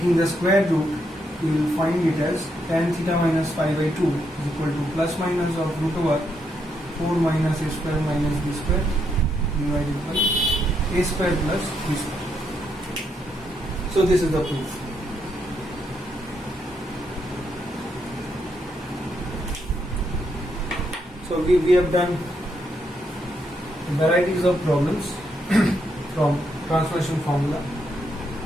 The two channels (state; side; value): normal; both; correlation 0.78